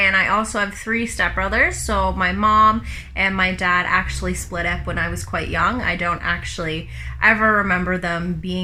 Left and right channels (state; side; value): identical; both; correlation 1.00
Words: I also have 3 stepbrothers. So my mom and my dad actually split up when I was quite young. I don't actually ever remember them